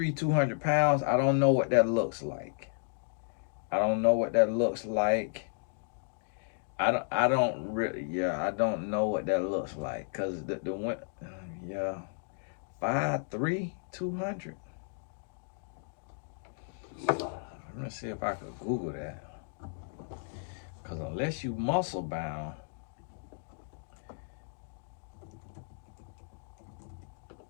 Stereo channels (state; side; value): silent; right; digital silence